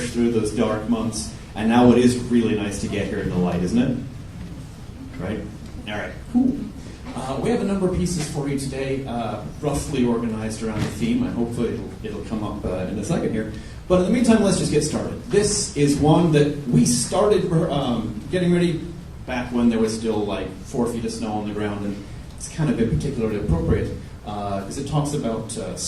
through those dark months, and now it is really nice to get here in the light, isn't it? Right? All right, cool. We have a number of pieces for you today, roughly organized around the theme, and hopefully it'll come up in a second here. But in the meantime, let's just get started. This is one that we started getting ready back when there was still like 4 feet of snow on the ground, and it's kind of been particularly appropriate because it talks about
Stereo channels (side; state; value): both; identical; correlation 1.00